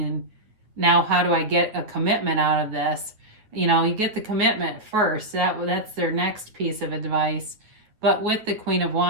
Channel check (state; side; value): late; left; 9.3 ms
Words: now how do I get a commitment out of this? You know, you get the commitment first. That's their next piece of advice. But with the Queen of